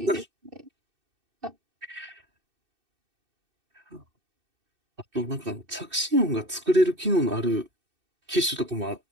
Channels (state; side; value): late; left; 2.6 ms